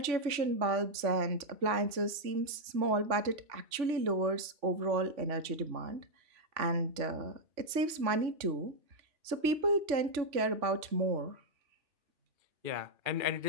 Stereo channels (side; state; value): left; late; 3.4 ms